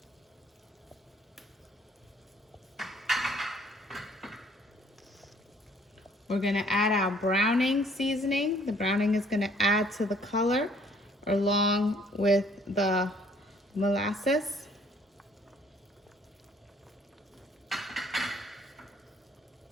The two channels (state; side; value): normal; both; correlation 0.60